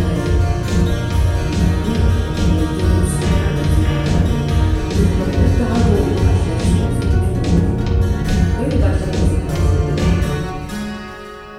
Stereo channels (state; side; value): identical; both; correlation 1.00